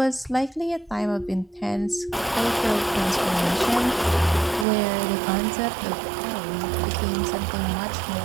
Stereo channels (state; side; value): drops out; left; at 4.7 s